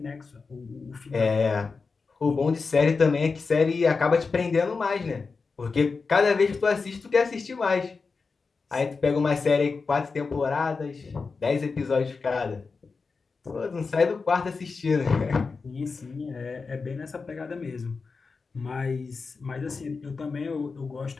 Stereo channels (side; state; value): right; quieter; 4.6 dB